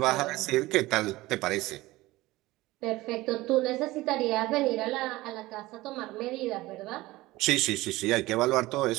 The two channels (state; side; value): quieter; left; 19.0 dB